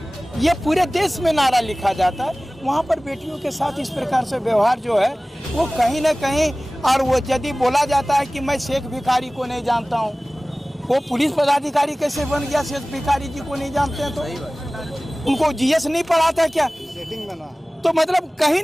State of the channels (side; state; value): both; normal; correlation 0.98